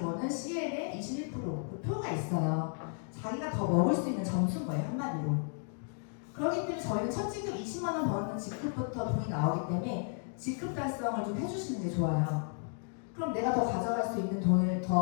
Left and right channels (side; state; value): right; silent; 55 dB below the other